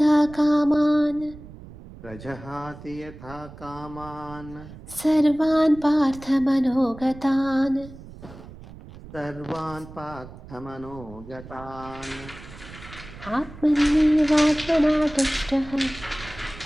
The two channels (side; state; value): right; noise; rumble, 17 dB below the sound